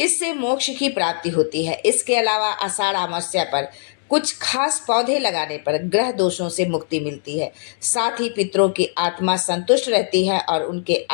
मोक्ष की प्राप्ति होती है। इसके अलावा आषाढ़ अमावस्या पर कुछ खास पौधे लगाने पर ग्रह दोषों से मुक्ति मिलती है। साथ ही पितरों की आत्मा संतुष्ट रहती है और उनके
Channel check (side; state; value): right; silent; digital silence